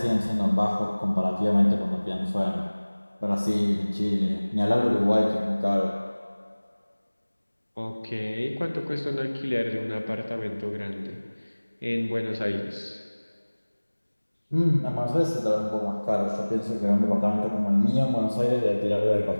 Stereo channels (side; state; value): both; inverted; correlation -1.00